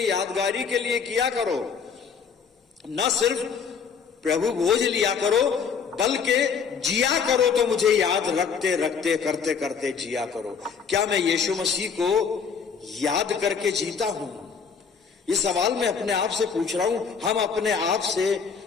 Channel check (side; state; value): right; quieter; 6.2 dB